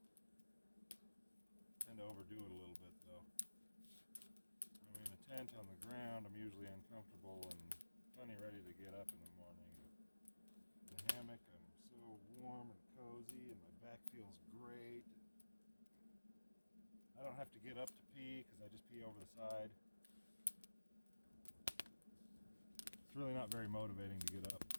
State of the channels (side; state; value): both; inverted; correlation -1.00